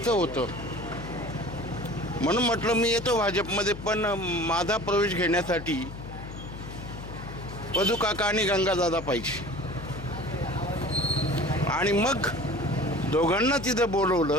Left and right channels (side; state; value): left; noise; hum, 11 dB below the sound